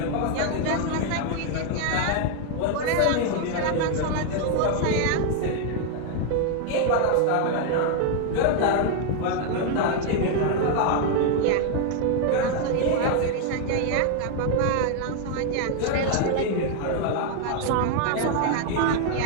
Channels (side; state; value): both; different; correlation 0.00